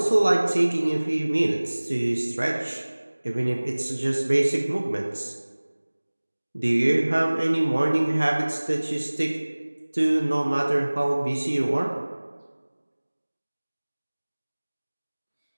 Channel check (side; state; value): both; inverted; correlation -1.00